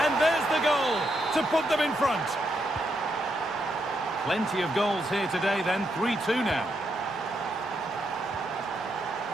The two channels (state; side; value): normal; both; correlation 0.80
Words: there's the goal to put them in front. Plenty of goals here today then, 3-2 now.